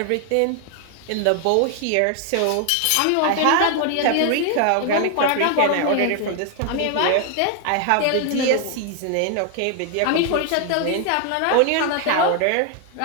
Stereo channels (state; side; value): different; both; correlation 0.00